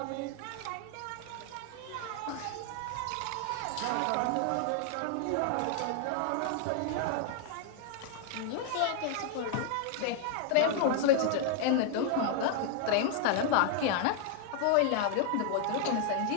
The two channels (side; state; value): both; different; correlation 0.00